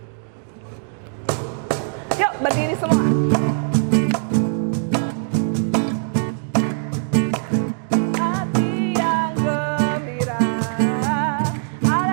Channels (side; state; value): left; silent; digital silence